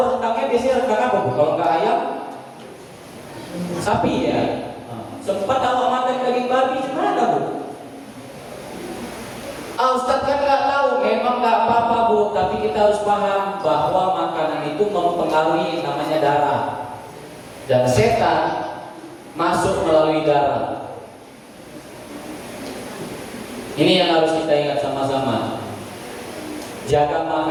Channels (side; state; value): both; identical; correlation 1.00